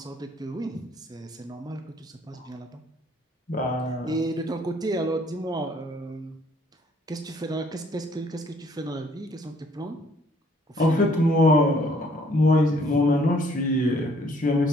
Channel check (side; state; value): both; normal; correlation 0.62